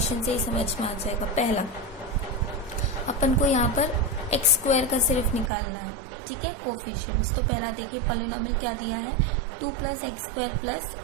से ही समझ में आ जाएगा। पहला अपन को यहाँ पर एक्स स्क्वायर का सिर्फ निकालना है, ठीक है, कोफिशिएंट्स। तो पहला देखिए पॉलिनोमियल क्या दिया है, 2 + x स्क्वायर प्लस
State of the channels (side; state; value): left; drops out; at 5.5 s